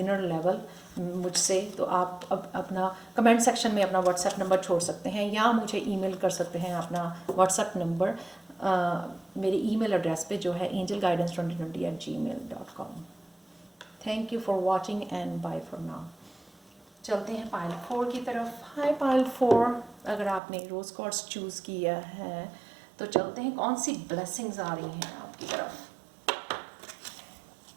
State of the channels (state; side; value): drops out; left; at 20.4 s